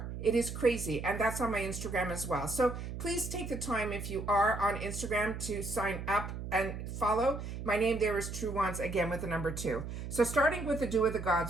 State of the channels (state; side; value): noise; right; hum, 7 dB below the sound